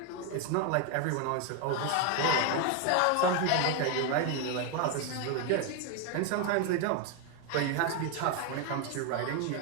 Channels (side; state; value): both; different; correlation 0.01